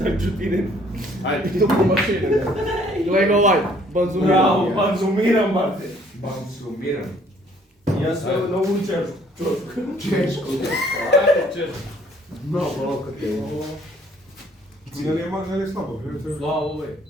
čutinem. Ajde. Gle ga ovaj, Bravo, banzumiram, brate. Banzumiram. Ja sve naučem češku. Ajde, češ. Mnogo loko ti je. Не слабо, Slava ovaj.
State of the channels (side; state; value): both; normal; correlation 0.60